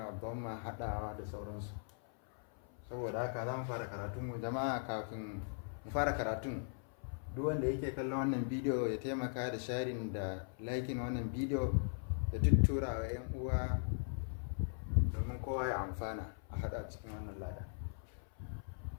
dhamma, haɗawa da sauransu. Saboda haka za mu fara karatunmu. Jama'a, kafin mu fara karatun, duk wanda yake kallon wannan bidiyo ya taimaka da sharing da liking wannan bidiyo da tuttura wa 'yan uwa domin kowa ya amfana a haɗa cikin wannan lada.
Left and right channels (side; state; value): right; silent; 52 dB below the other